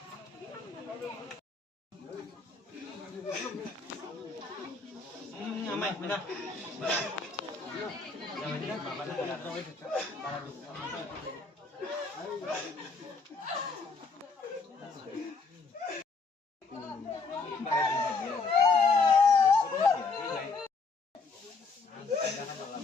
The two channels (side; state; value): right; quieter; 4.3 dB